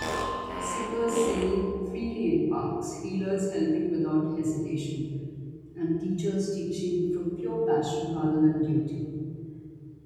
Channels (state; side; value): identical; both; correlation 1.00